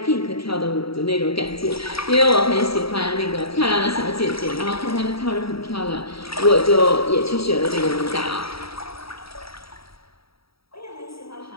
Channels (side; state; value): right; late; 0.76 ms